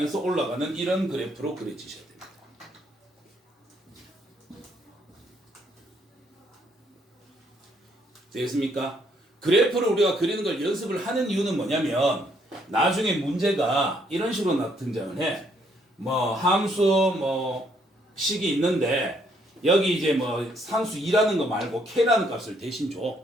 올라가는 이런 그래프로 그려지셔야 됩니다. 되겠습니까? 그래프를 우리가 그리는 걸 연습을 하는 이유는 뭐냐면 나중에 문제가 이런 식으로 등장을 해. 뭐 함수 뭐 식이 있는데 여기 이제 뭐 상수 2라는 거 말고 k라는 값을 대신 줘.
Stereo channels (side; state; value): both; normal; correlation 0.70